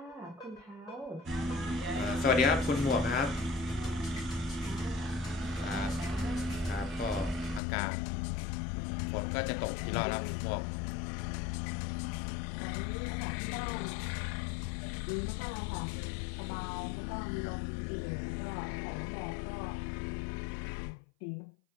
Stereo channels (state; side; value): drops out; right; at 7.6 s